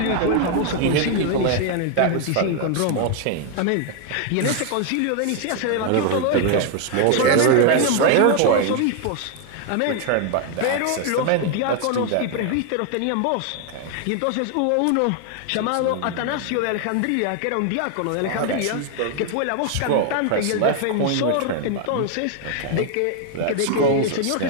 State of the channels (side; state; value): both; different; correlation 0.00